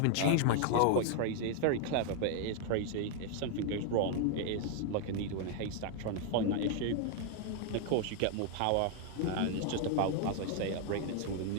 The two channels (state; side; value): different; both; correlation 0.00